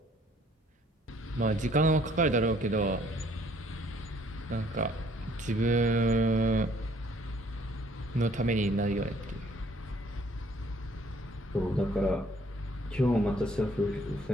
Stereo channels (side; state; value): both; normal; correlation 0.61